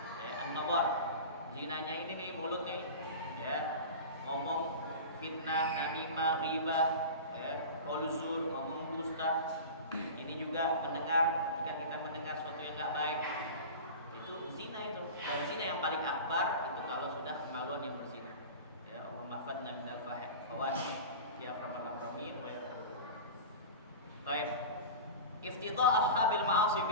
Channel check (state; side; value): inverted; both; correlation -0.31